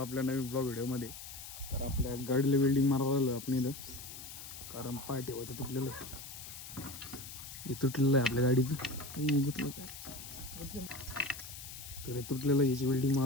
नवीन ब्लॉग व्हिडिओमध्ये. तर आपल्या गाडीला वेल्डिंग मारायला आपण इथं, कारण पाय ठेवायचं तुटलेलं आहे. हे तुटलेलं आहे आपल्या गाडीचं. हे गुतलं काय तर हे तुटलेलं, याची वेल्डिंग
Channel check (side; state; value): left; noise; hiss, 12 dB below the sound